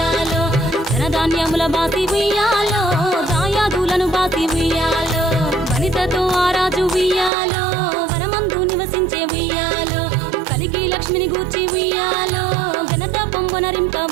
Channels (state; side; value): drops out; left; at 7.3 s